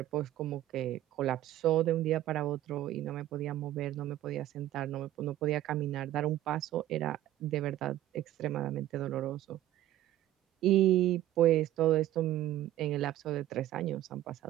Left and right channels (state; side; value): quieter; left; 13.7 dB